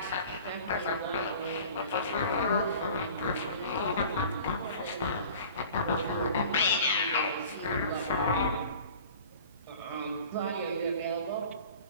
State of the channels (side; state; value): both; inverted; correlation -0.44